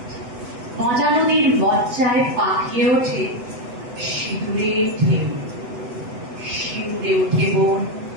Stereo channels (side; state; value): left; late; 8.0 ms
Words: মজা নদীর মজ্জায় পাকিয়ে ওঠে সিঁদুরের ঢেউ। শিউরে ওঠে বন,